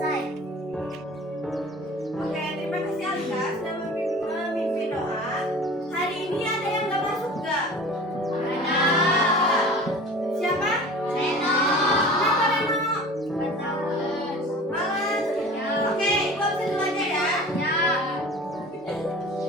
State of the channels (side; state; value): both; normal; correlation 0.41